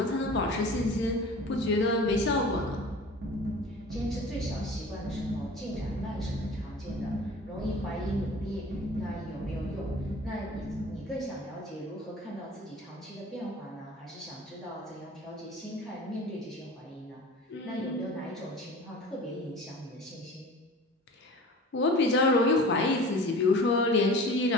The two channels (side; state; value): both; normal; correlation 0.40